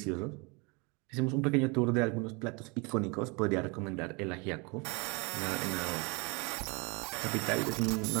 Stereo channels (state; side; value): quieter; left; 30.0 dB